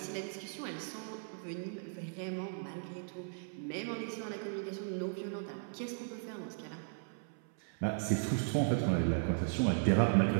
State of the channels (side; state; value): left; silent; 53 dB below the other